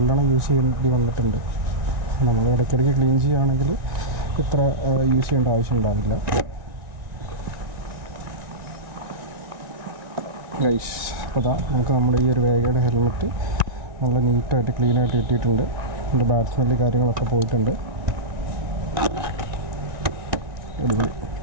യൂസ് ചെയ്യേണ്ടി വന്നിട്ടുണ്ട്. നമ്മൾ ഇടയ്ക്കിടയ്ക്ക് ക്ലീൻ ചെയ്യുകയാണെങ്കിൽ ഇത്ര യൂസ് ചെയ്യേണ്ട ആവശ്യം ഉണ്ടാവില്ല. ഗൈസ്, അപ്പോൾ അതാ നമുക്ക് നമ്മുടെ ഈ ഒരു വേഗയുടെ ഹെൽമെറ്റ് നല്ല നീറ്റായിട്ട് ക്ലീനായിട്ട് കിട്ടിയിട്ടുണ്ട്. അതിൻ്റെ ബാഡ് സ്മെല്ല് കാര്യങ്ങളൊക്കെ പോയിട്ടുണ്ട്. അടിപൊളി.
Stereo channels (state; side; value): late; left; 1.9 ms